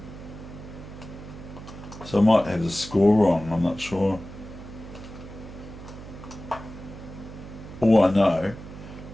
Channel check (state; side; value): noise; right; hum, 14 dB below the sound